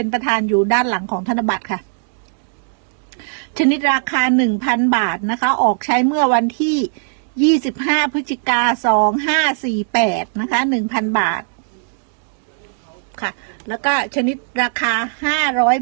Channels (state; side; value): silent; left; digital silence